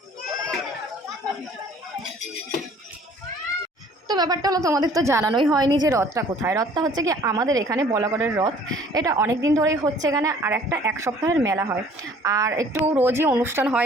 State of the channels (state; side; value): normal; both; correlation 0.54